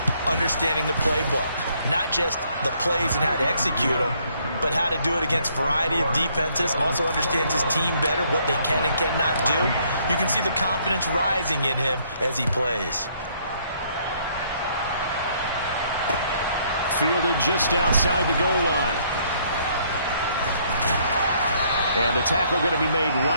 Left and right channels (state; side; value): inverted; both; correlation -0.67